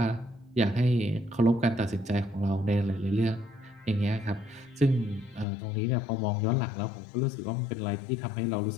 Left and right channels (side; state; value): right; drops out; at 5.5 s